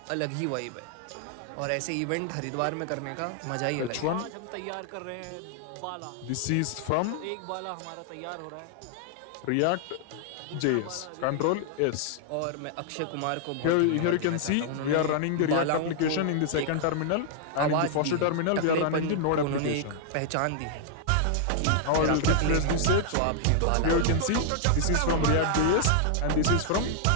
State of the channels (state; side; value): different; both; correlation -0.01